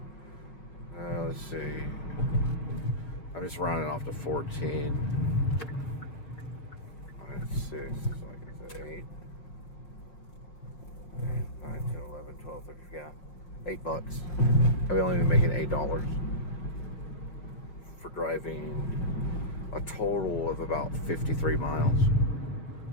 Let's see. I'm just rounding off to 14. That's 6. So I guess 8. 9, 10, 11, 12, 13, yeah. $8. I've only been making $8 for driving a total of about 53 miles.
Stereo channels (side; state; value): right; late; 5.8 ms